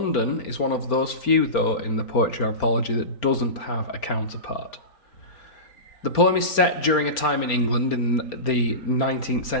is one of those few, though, in the poetry anthology that doesn't have a counterpart. The poem is set during a time in England in the 19th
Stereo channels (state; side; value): late; right; 4.3 ms